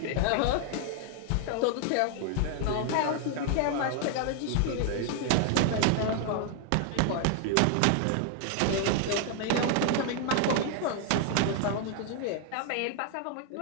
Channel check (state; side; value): different; both; correlation 0.00